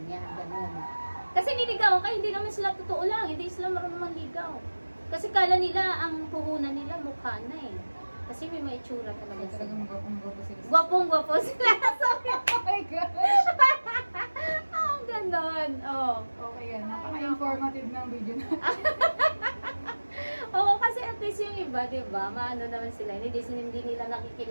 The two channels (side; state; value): both; inverted; correlation -1.00